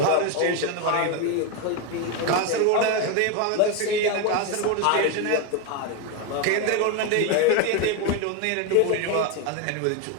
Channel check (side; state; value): both; different; correlation 0.02